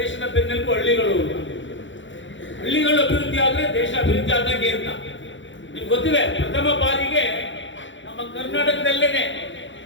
ಬೆನ್ನೆಲುಬು ಹಳ್ಳಿಗಳು. ಹಳ್ಳಿಗಳು ಅಭಿವೃದ್ಧಿ ಆದ್ರೆ ದೇಶ ಅಭಿವೃದ್ಧಿ ಆದಂಗೆ ಅಂತ ನಿಮ್ಗೆ ಗೊತ್ತಿದೆ. ಪ್ರಥಮ ಬಾರಿಗೆ ನಮ್ಮ ಕರ್ನಾಟಕದಲ್ಲೇನೆ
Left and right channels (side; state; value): right; late; 0.55 ms